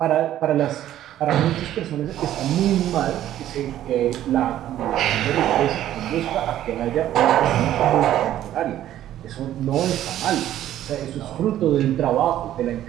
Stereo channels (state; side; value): quieter; left; 12.4 dB